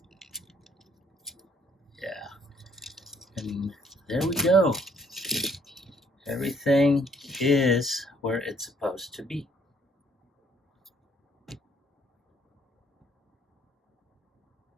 Yeah. And there we go. Everything is where it's supposed to be.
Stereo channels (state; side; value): normal; both; correlation 0.65